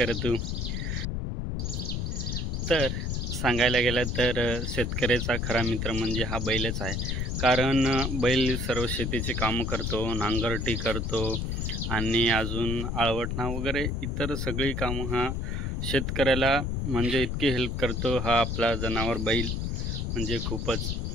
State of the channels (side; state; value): left; noise; rumble, 1 dB below the sound